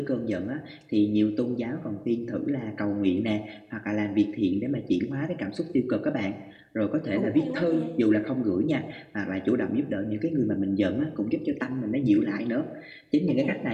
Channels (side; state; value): both; identical; correlation 1.00